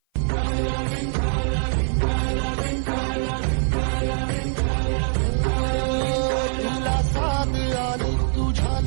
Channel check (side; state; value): left; silent; 55 dB below the other